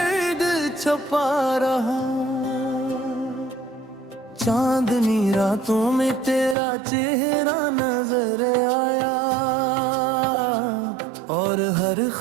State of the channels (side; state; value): left; drops out; at 6.6 s